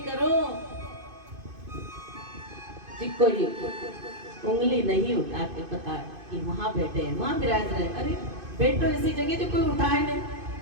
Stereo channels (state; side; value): late; left; 2.5 ms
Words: करो जी, कोई उंगली नहीं उठा के पता कि वहां बैठे हैं, वहां विराज रहे। अरे बैठो ऐसी जगह जो कोई उठाए नहीं,